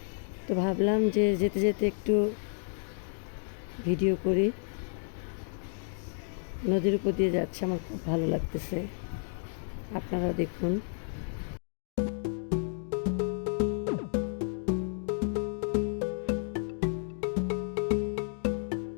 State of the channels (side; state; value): right; silent; digital silence